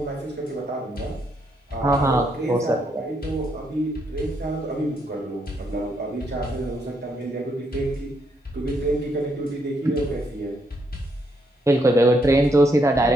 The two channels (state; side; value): normal; both; correlation 0.75